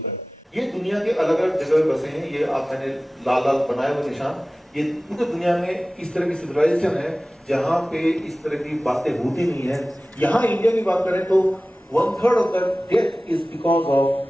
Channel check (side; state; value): both; normal; correlation 0.97